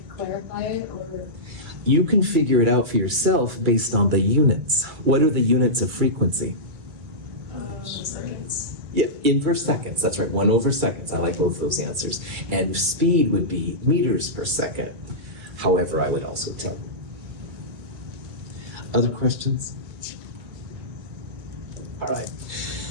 clarify it or? You can figure it out for yourself based on the units. What are the units of frequency? Seconds. Yeah, inverse seconds. That's right, 1 over seconds. I like both those answers. And speed would be meters per second. However, I would also tell you. Other questions? All right.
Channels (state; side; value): late; left; 2.3 ms